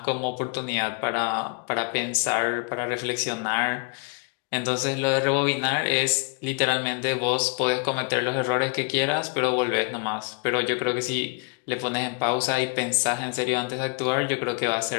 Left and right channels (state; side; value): quieter; right; 34.2 dB